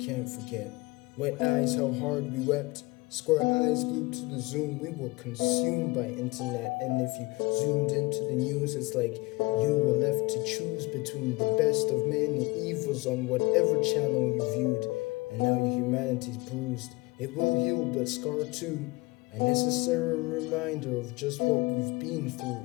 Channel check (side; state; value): right; quieter; 23.2 dB